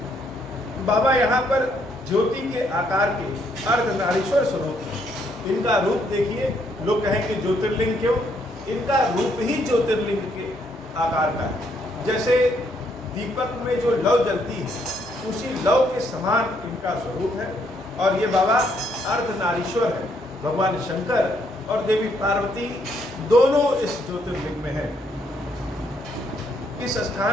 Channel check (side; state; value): both; normal; correlation 0.72